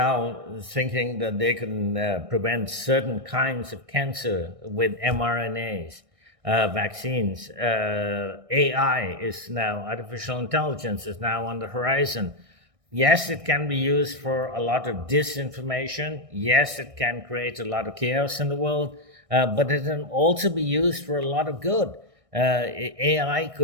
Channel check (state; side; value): late; left; 1.6 ms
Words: thinking that they can prevent certain kinds of cancer with mRNAs, vaccines. AI is now, artificial intelligence is now on the horizon. Yes, it can be used for a lot of disinformation. Yes, it can create a lot of chaos in the world. But it can also be used for a lot of good. AI